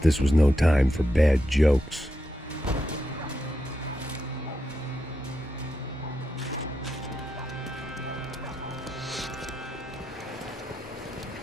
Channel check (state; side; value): normal; both; correlation 0.85